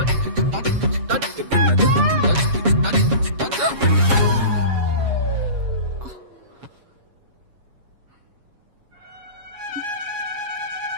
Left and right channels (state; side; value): late; left; 7.2 ms